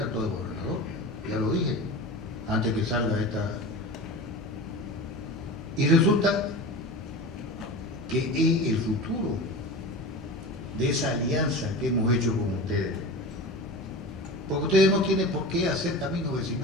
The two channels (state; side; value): normal; both; correlation 0.31